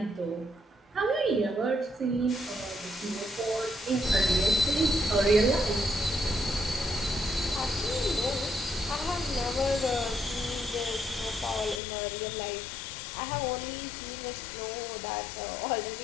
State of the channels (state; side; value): drops out; right; at 11.8 s